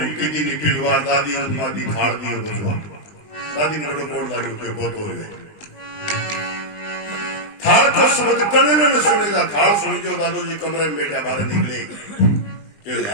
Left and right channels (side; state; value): right; late; 20 ms